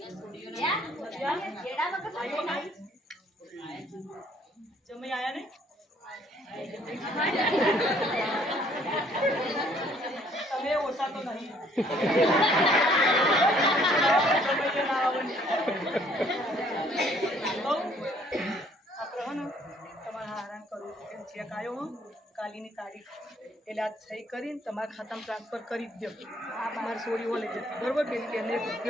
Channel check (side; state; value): both; normal; correlation 0.62